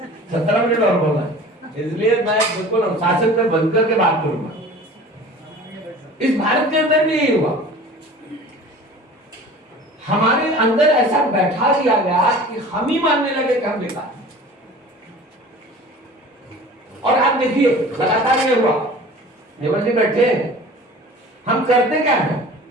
17 मिनट और बोलना, इसलिए मैं बिल्कुल अनुशासन में बंद करके बात करूंगा। इस भारत के अंदर भी यही हुआ, हमारे अंदर ऐसा बैठा दिया गया कि हम ही मानने लगे कि हम बेकार। और आप देखिए लगातार ये हुआ, नेवल जी बैठे हैं, हम करते क्या है?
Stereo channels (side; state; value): both; normal; correlation 0.42